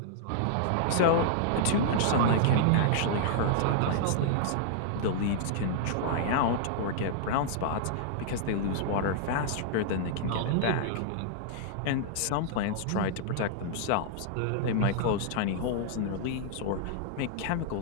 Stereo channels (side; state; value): both; different; correlation -0.01